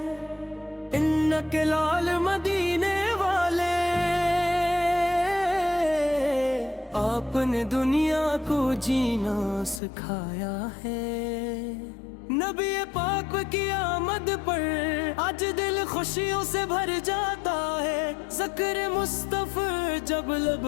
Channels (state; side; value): drops out; right; at 9.8 s